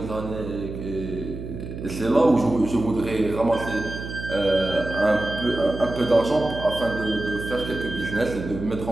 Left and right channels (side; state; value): right; noise; hum, 9 dB below the sound